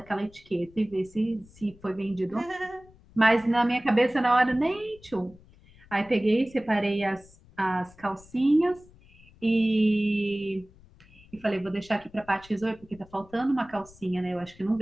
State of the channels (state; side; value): noise; left; rumble, 25 dB below the sound